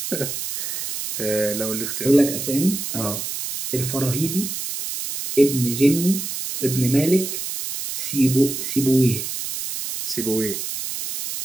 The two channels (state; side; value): noise; right; hiss, 5 dB below the sound